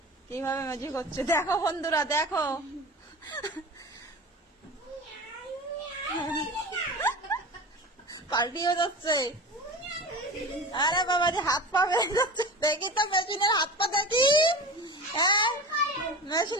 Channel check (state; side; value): normal; both; correlation 0.31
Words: কিভাবে ম্যাজিক হচ্ছে, দেখো বন্ধুরা দেখো। পাল্টিয়ে যাচ্ছে। আরে বাবা যে হাত পা বেড়ে যাচ্ছে, দেখি তো মেশিনের হাত পা দেখি। হ্যাঁ